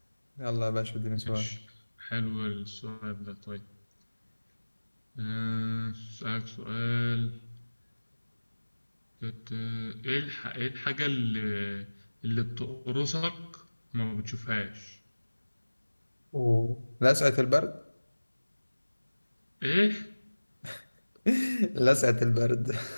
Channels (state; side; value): inverted; both; correlation -1.00